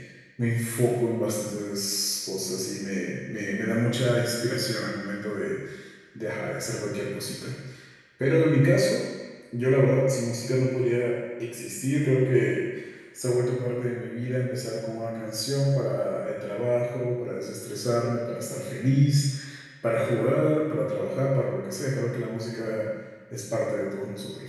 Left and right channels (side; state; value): both; identical; correlation 1.00